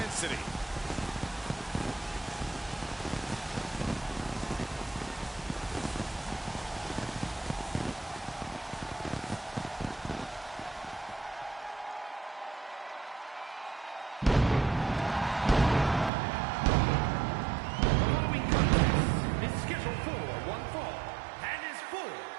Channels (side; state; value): left; drops out; at 16.1 s